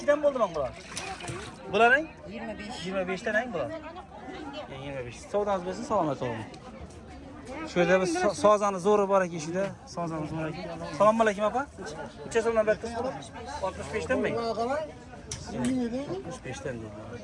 mi oldu lan bular? Bular ne? 25. 25'ten ne bular? 25. Soğudanız versin salamet olun. Şöyle bir sazanı zoru var ki işte. Sazanı zoru ki. Salam aleyküm apa. Neçə so'mdan bəttiniz bular? 65'ten mi? 65'ten değil.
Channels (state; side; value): identical; both; correlation 1.00